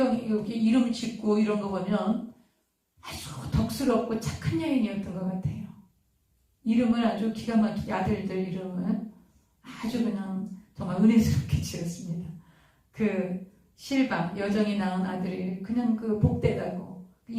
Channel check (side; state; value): both; identical; correlation 1.00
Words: 여기 이름 짓고 이런 거 보면 아주 덕스럽고 착한 여인이었던 것 같아요. 이름을 아주 기가 막히게 아들들 이름을 아주 그냥 정말 은혜스럽게 지었습니다. 그 실바 여정이 낳은 아들이 그냥 그 복되다고